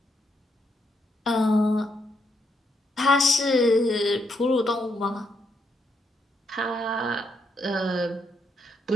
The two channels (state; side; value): normal; both; correlation 0.78